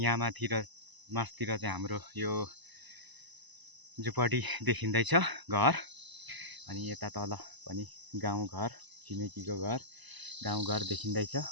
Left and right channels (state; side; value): late; left; 1.0 ms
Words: माथि र मास्तिर चाहिँ हाम्रो यो झुपडी देखिँदैछ, घर। अनि यता तल पनि गाउँघर, छिमेकीको घर, गाउँघर देखिँदैछ